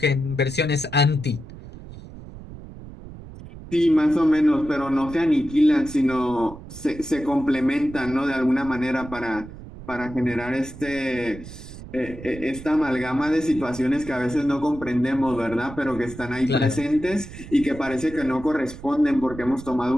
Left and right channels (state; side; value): noise; right; rumble, 14 dB below the sound